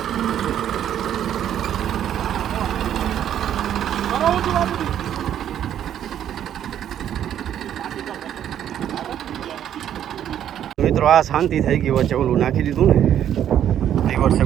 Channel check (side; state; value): left; quieter; 10.3 dB